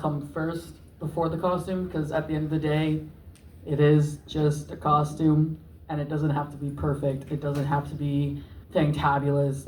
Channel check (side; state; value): both; identical; correlation 1.00